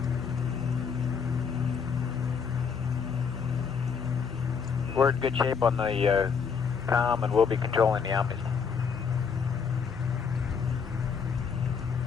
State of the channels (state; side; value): quieter; right; 6.2 dB